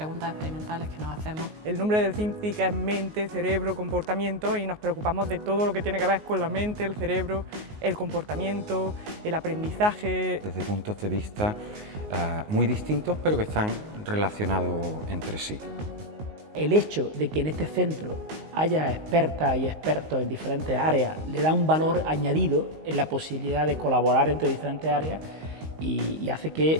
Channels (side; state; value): left; late; 19 ms